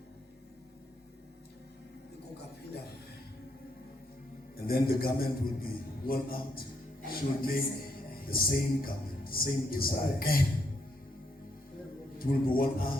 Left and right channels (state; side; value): normal; both; correlation 0.76